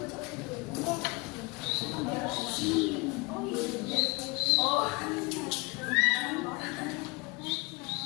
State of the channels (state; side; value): quieter; right; 27.3 dB